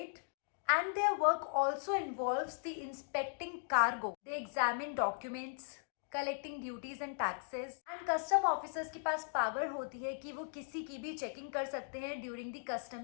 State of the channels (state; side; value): silent; right; digital silence